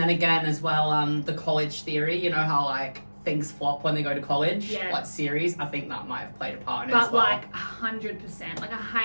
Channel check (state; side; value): inverted; both; correlation -1.00